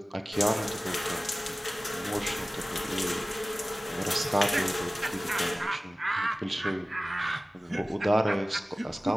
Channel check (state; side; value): normal; both; correlation 0.97